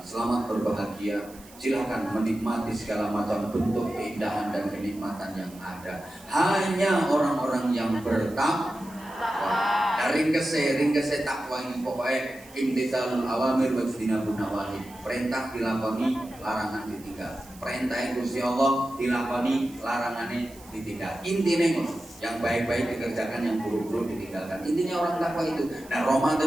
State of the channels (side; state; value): right; noise; hiss, 22 dB below the sound